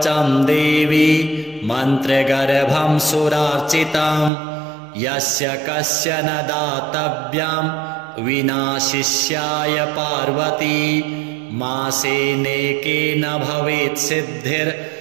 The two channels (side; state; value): left; drops out; at 4.3 s